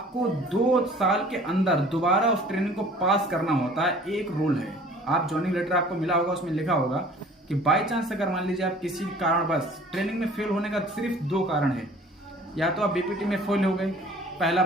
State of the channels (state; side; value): normal; both; correlation 0.50